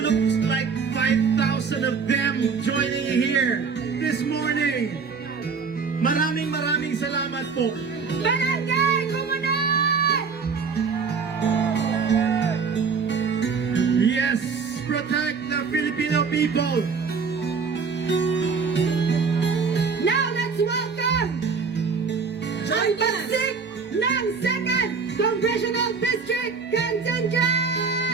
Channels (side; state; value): left; quieter; 5.4 dB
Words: looks like 5,000 of them joining here this morning. Maraming salamat po. Barangay Komunal! Yes, protect the Filipino people. Now let's welcome ang pagsik ng 2nd Congressional District